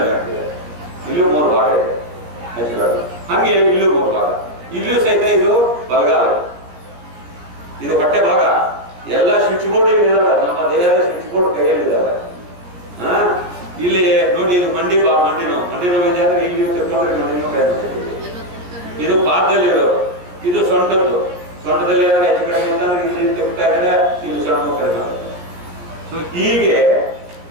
ಜಾಯಿಂಟ್ ಇದೆ, ಇಲ್ಲೂ 3 ಭಾಗ ಇದೆ ನೆಚ್ಚಿಗಳು. ಹಂಗೆ ಇಲ್ಲೂ 3 ಭಾಗ, ಇಲ್ಲೂ ಸಹಿತ ಇದು ಬಲಗಾಲ, ಇದು ಹೊಟ್ಟೆ ಭಾಗ. ಎಲ್ಲ ಸ್ವಿಚ್ ಬೋರ್ಡ್ ಇದಾವೆ, ನಮ್ಮ ದೇಹದ ಸ್ವಿಚ್ ಬೋರ್ಡ್ ಕೈಯಲ್ಲಿ ಇದಾವೆ. ಇಲ್ಲಿ ನೋಡಿ, ಇದು ಮಂಡಿ ನೋವು ಇದೆ ಅಂದ್ರೆ ಇಲ್ಲಿ ತಿಳ್ಕೊಂಡ್ರೆ ಮಂಡಿ ನೋವು ಕೈ ಮಾಡ್ತೀವಿ. ಇದು ಪಾದದಲ್ಲಿರೋದು, ಇದು ಸೊಂಟದಲ್ಲಿ ಏನಾದ್ರು ಹೆಚ್ಚು ಕಡಿಮೆ ಅಂತಂದ್ರೆ ಇಲ್ಲಿ ತಿಳ್ತಾ ಇದ್ರೆ ಇಲ್ಲಿ ಸೊಂಟ ನೋವು ಕಡಿಮೆ ಆಗುತ್ತೆ. ಸೊ ಹೀಗೆ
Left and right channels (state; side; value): late; left; 17 ms